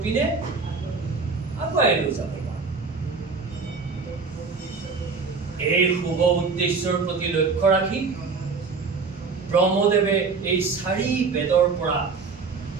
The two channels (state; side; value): quieter; left; 4.7 dB